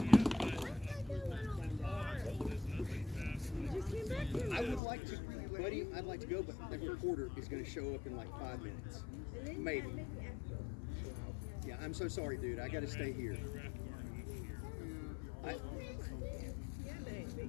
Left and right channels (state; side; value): drops out; right; at 4.8 s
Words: I would like to, buddy. I'd like to go, but that reporter is going to show up in like 5 minutes, maybe. Yeah, I'm so sorry, dude. I got to stay here.